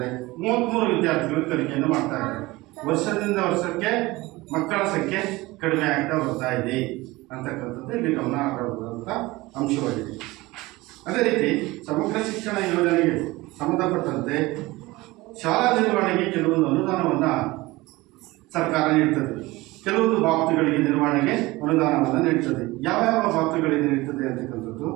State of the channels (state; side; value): quieter; left; 20.6 dB